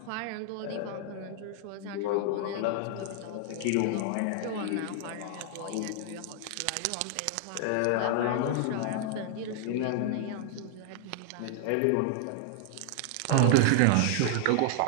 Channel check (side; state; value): both; different; correlation 0.00